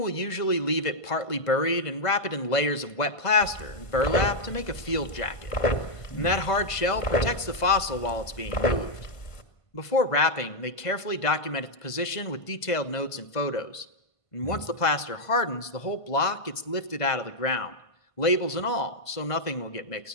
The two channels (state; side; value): late; right; 1.5 ms